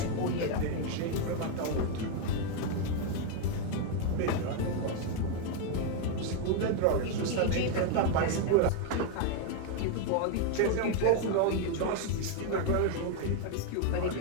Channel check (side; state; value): both; different; correlation 0.01